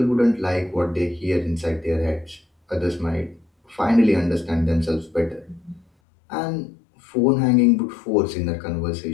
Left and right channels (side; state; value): right; drops out; at 5.9 s